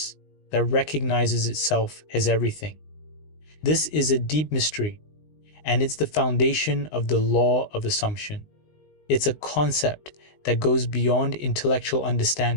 that recognizes itself as everything. This is a deep mystery, and it's the foundation of the law of assumption. It's a concept that goes beyond intellectual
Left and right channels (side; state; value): right; late; 19 ms